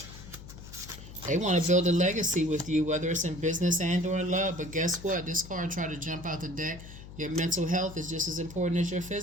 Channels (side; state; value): left; noise; hum, 15 dB below the sound